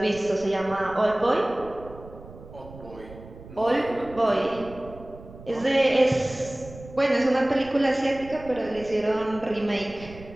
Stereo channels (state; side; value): noise; right; rumble, 17 dB below the sound